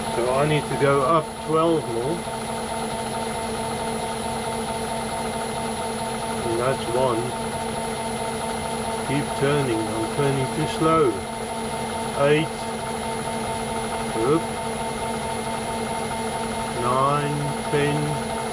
So I need to go up 12mm. And that's one. Keep turning, I'm turning too slow. 8. Oop. 9, 10,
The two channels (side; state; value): both; identical; correlation 1.00